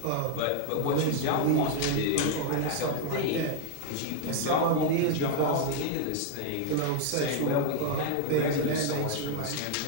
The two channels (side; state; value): both; different; correlation 0.00